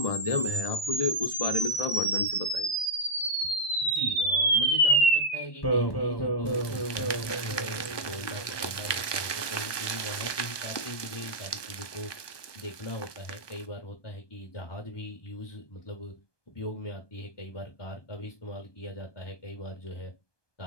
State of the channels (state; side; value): late; right; 1.2 ms